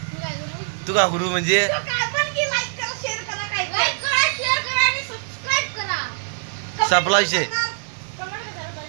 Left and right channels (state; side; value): silent; left; digital silence